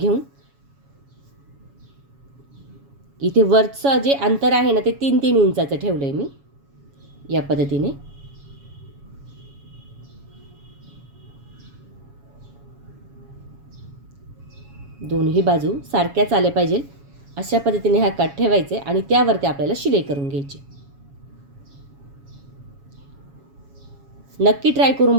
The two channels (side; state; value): left; late; 7.2 ms